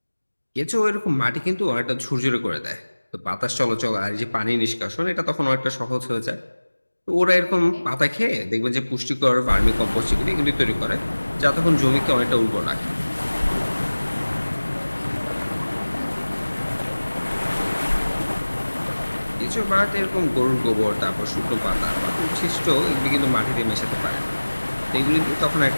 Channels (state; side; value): inverted; both; correlation -1.00